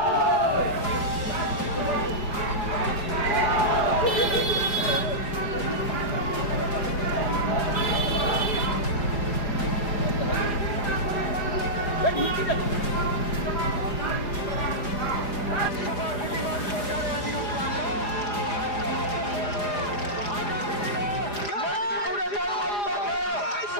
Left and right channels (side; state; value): right; late; 4.9 ms